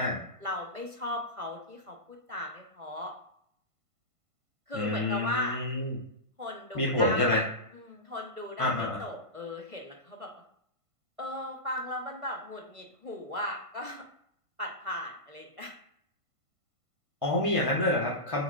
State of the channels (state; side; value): late; left; 1.5 ms